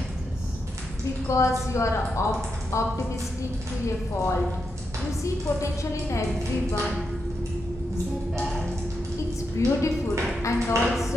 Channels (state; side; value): normal; both; correlation 0.85